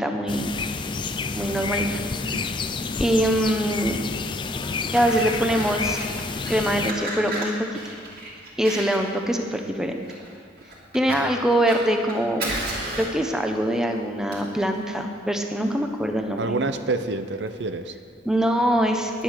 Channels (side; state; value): both; normal; correlation 0.66